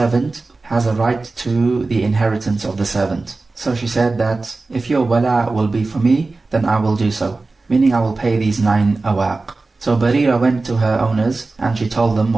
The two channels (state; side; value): quieter; left; 3.5 dB